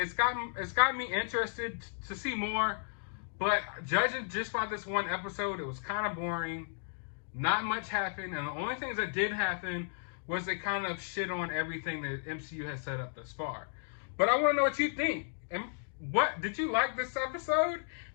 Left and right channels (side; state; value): right; silent; digital silence